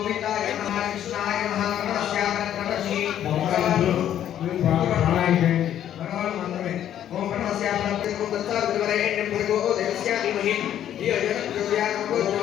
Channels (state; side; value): quieter; right; 10.7 dB